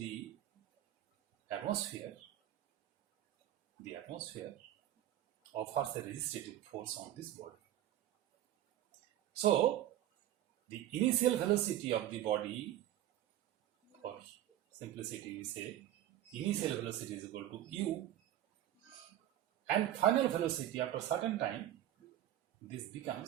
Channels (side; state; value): left; quieter; 12.7 dB